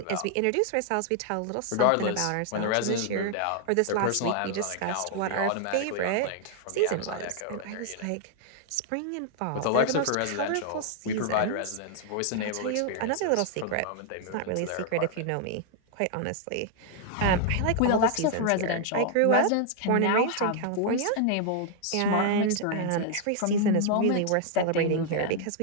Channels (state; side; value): different; both; correlation 0.00